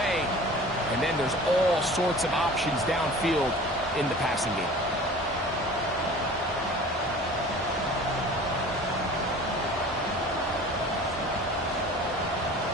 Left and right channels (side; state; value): both; normal; correlation 0.43